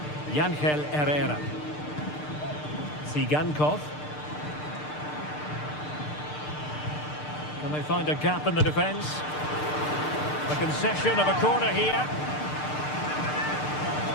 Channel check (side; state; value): right; late; 6.7 ms